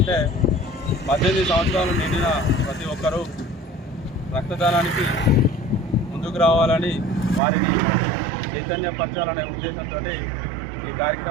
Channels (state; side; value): drops out; left; at 7.4 s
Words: 18 సంవత్సరాలు నిండిన ప్రతి ఒక్కరూ రక్తదానానికి ముందుకు రావాలని, వారిని చైతన్యపరచాలనే ఉద్దేశంతో ఈ